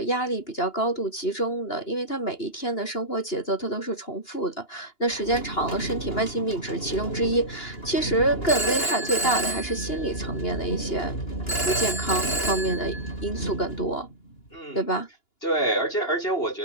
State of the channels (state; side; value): late; right; 2.9 ms